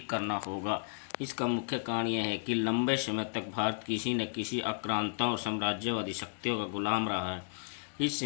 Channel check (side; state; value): right; silent; digital silence